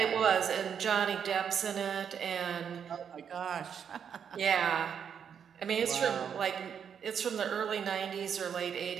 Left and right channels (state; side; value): quieter; left; 7.7 dB